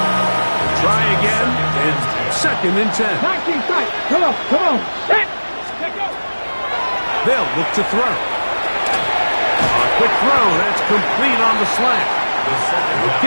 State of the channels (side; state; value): both; inverted; correlation -1.00